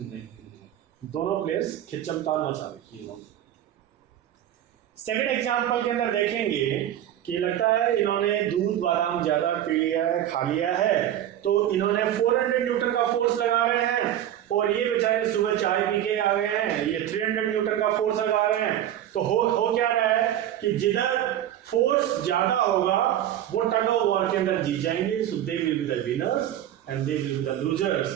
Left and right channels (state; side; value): quieter; left; 11.6 dB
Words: है। दोनों प्लेयर्स खिंचमतान मचा रही है। सेकंड एग्जांपल के अंदर देखेंगे कि लगता है इन्होंने दूध बादाम ज्यादा पी लिया है, खा लिया है, तो इन्होंने 400 न्यूटन का फोर्स लगा रहे हैं, और ये बेचारे सुबह चाय पी के आ गए हैं, ये 300 न्यूटन का फोर्स लगा रहे हैं। तो हो क्या रहा है कि जिधर फोर्स ज्यादा होगा वो टग ऑफ वॉर के अंदर जीत जाएंगे, so they will be the winners and they will be the losers.